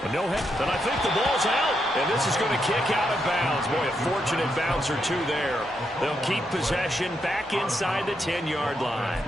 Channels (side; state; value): both; normal; correlation 0.81